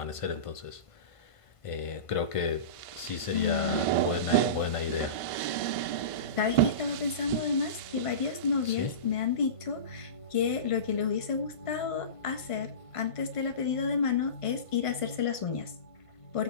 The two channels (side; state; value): right; late; 1.5 ms